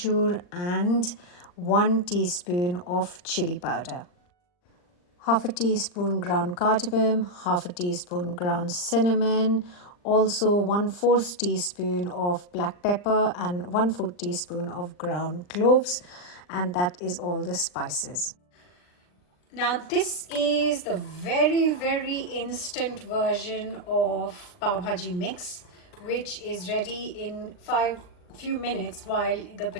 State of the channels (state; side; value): late; right; 39 ms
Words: and 1 teaspoon of chili powder. Half a teaspoon ground cardamom, half a teaspoon ground cinnamon, also 1/4 teaspoon of black pepper and 1/4 teaspoon of ground cloves, and that is all the spices. Now this is the very, very instant version of pav bhaji mix, which is ready in few minutes while the